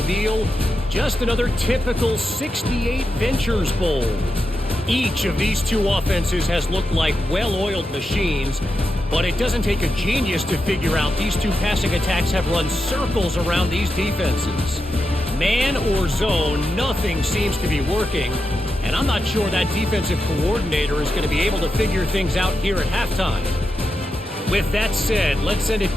just another typical 68 Ventures Bowl. Each of these 2 offenses has looked like well-oiled machines, but it doesn't take a genius to figure out these 2 passing attacks have run circles around these defenses. Man or zone, nothing seems to be working, and I'm not sure that defensive coordinator is going to be able to figure things out here at halftime. With that said, let's send it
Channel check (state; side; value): normal; both; correlation 0.88